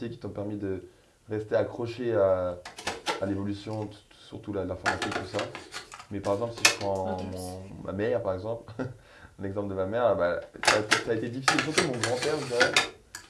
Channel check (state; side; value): identical; both; correlation 1.00